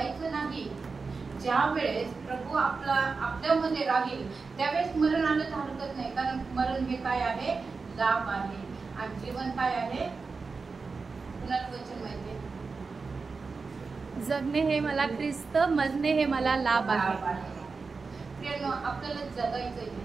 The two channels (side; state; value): left; quieter; 4.5 dB